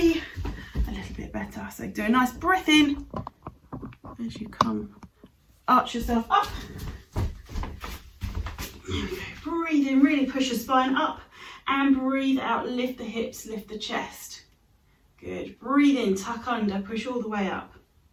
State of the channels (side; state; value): both; identical; correlation 1.00